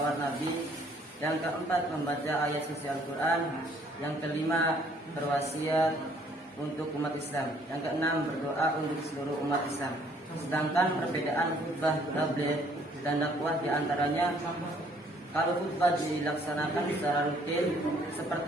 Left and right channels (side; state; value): both; normal; correlation 0.62